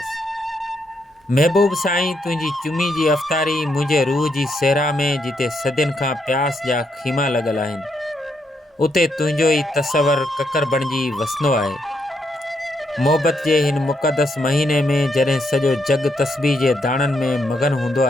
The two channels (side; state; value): both; normal; correlation 0.78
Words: महबूब साईं तुझी चुमी जी अफ़तारी मुझे रूह जी सेहरा में जिते सदियन खां प्यास जा खीमा लगल आहिनि, उते तुझो ही तसवर ककर बणिजी वसंदो आहे। मोहब्बत के हिन मुक़दस महीने में जॾहिं सॼो जग तस्बीह जे दाणनि में मगन हूंदो